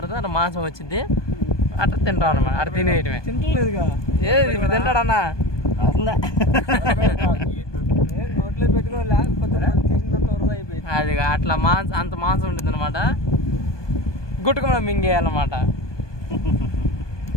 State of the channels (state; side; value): late; right; 1.2 ms